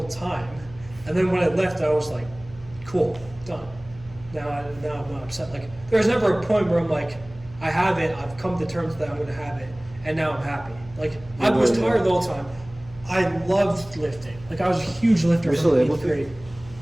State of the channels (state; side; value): noise; left; hum, 20 dB below the sound